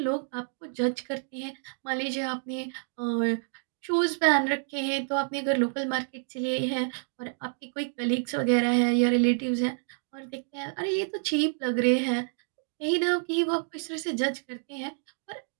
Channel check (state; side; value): silent; left; digital silence